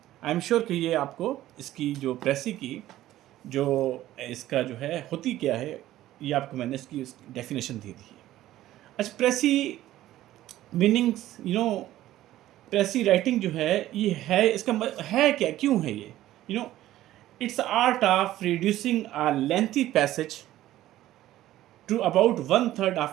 आई एम श्योर कि ये आपको इसकी जो प्रेसी की जो इसका जो है होती क्या है, ये आपको मैंने इसकी डेफिनेशन दे दी है। अच्छा, प्रेसी मीनिंग्स, प्रेसी राइटिंग जो है, ये है इसका है क्या, क्यों है ये, it's art of reducing a lengthy passage to about 1/3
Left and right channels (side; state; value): left; quieter; 14.3 dB